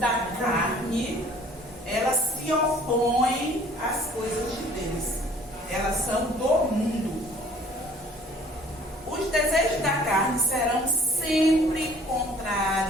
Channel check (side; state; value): both; normal; correlation 0.54